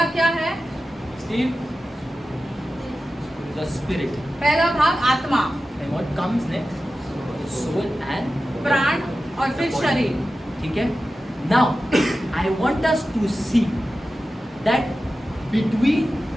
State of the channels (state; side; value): normal; both; correlation 0.94